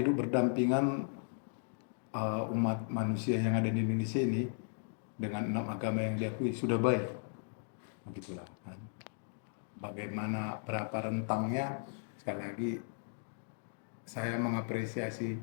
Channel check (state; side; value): silent; right; digital silence